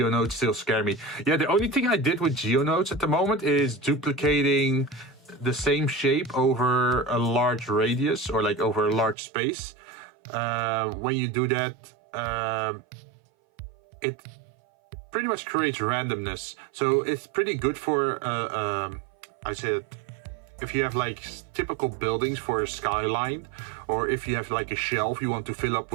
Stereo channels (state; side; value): drops out; left; at 9.2 s